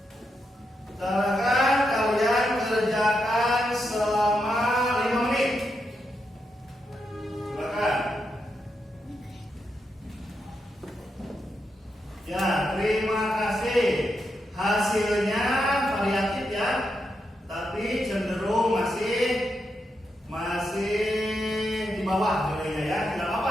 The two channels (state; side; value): normal; both; correlation 0.84